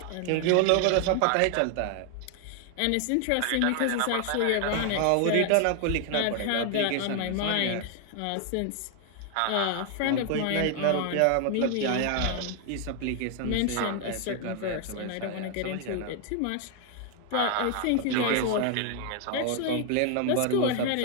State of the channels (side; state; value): both; different; correlation 0.00